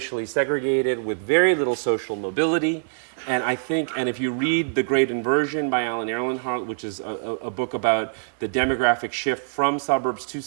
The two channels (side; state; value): left; silent; digital silence